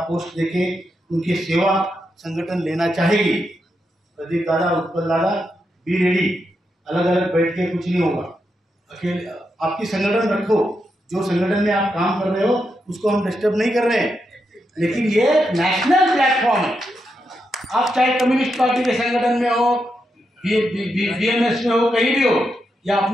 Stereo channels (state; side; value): normal; both; correlation 0.84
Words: पोस्ट देके उनकी सेवा संगठन लेना चाहेगी। प्रदीप दादा, उत्पल दादा, बी रेडी, अलग अलग बैठ के कुछ नहीं होगा, अकेले आपकी संगठन रखो, जो संगठन में आप काम कर रहे हो उसको हम डिस्टर्ब नहीं कर रहे हैं, लेकिन ये नेशनल प्लेटफॉर्म है। आप चाहे कम्युनिस्ट पार्टी के संगठन में हो, बीएमएस में हो, कहीं भी हो, या